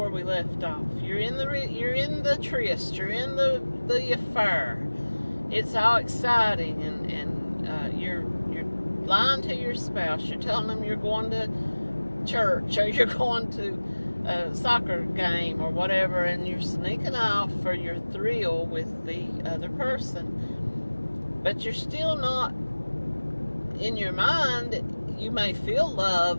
we left off. You're in the tryst. You're in the affair. It's all exciting, and you're lying to your spouse. You're telling them you're going to church, or you're going to a soccer game or whatever, and you're sneaking off for your thrill with the other person. But you're still not, in your mind, you may feel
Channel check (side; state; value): both; inverted; correlation -1.00